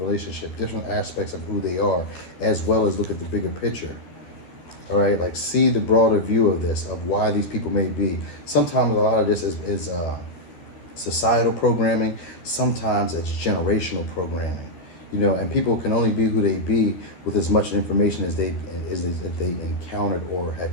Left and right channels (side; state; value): right; late; 13 ms